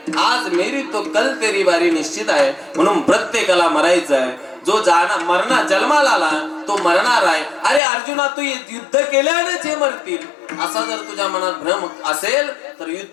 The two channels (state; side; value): drops out; right; at 7.8 s